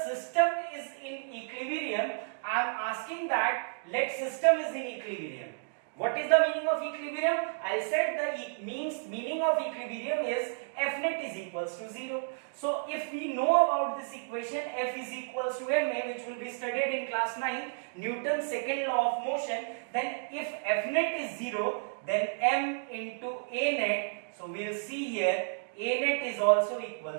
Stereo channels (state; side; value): silent; left; digital silence